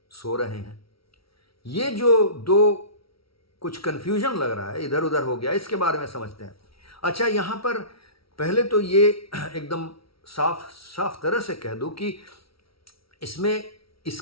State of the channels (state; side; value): late; right; 0.75 ms